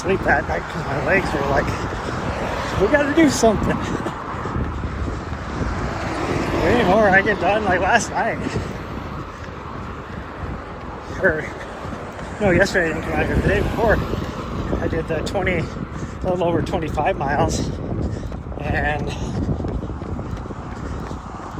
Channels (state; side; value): identical; both; correlation 1.00